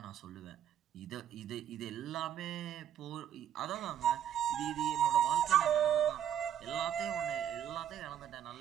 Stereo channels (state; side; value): quieter; left; 10.0 dB